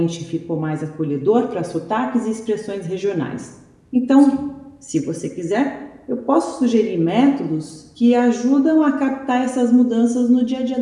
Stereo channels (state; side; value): identical; both; correlation 1.00